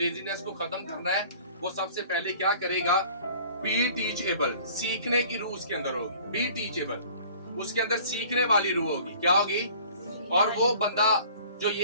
को खत्म करना है वो सबसे पहले क्या करेगा, बी टीचेबल, सीखने की रूह उसके अंदर होगी, बी टीचेबल, उसके अंदर सीखने वाली रूह होगी, क्या होगी। और वो बंदा जो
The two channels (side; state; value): both; inverted; correlation -0.49